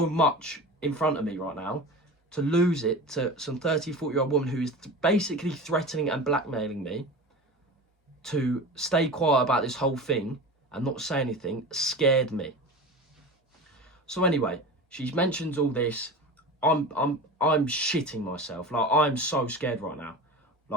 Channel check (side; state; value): both; normal; correlation 0.31